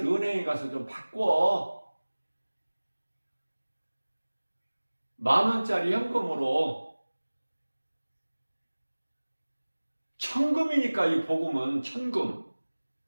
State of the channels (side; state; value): both; inverted; correlation -1.00